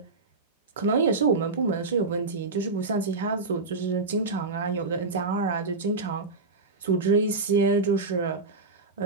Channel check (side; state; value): left; quieter; 3.7 dB